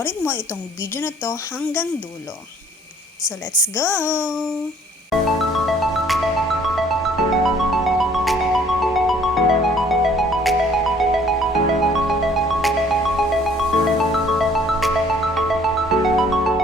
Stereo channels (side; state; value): both; normal; correlation 0.58